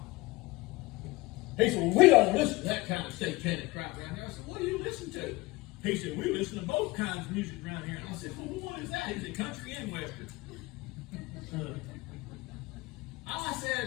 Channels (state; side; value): quieter; right; 21.9 dB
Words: He said, well, we don't listen to that kind of satanic crap around here. I said, what do you listen to? He said, we listen to both kinds of music around here. And I said, well, what is that? He said, country and western. I